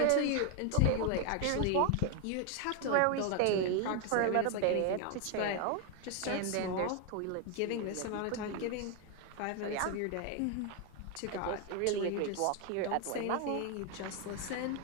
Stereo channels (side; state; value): both; different; correlation 0.01